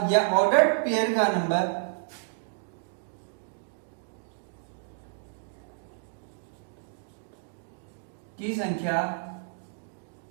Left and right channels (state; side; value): silent; left; digital silence